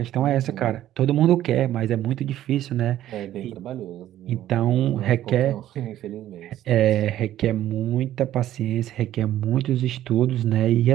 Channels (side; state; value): left; quieter; 12.8 dB